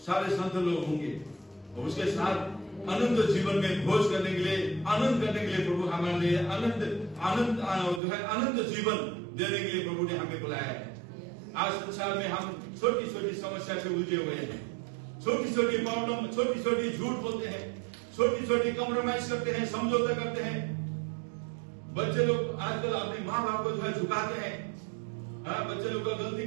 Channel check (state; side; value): drops out; left; at 8.0 s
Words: सारे संत लोग होंगे और उसके साथ अनंत जीवन में भोज करने के लिए, आनंद करने के लिए प्रभु हमारे लिए अनंत जीवन देने के लिए प्रभु ने हमें बुलाया है। आज संसार में हम छोटी छोटी समस्या से उलझे हुए हैं, छोटी छोटी प्रॉब्लम, छोटी छोटी झूठ बोलते हैं, छोटी छोटी कॉम्प्रोमाइज करते हैं, समझौता करते हैं। बच्चे लोग आजकल अपने माँ बाप को जो है झुकाते हैं। बच्चे लोग का गलती